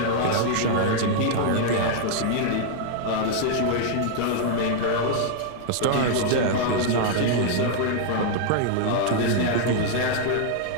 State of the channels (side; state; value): both; different; correlation -0.01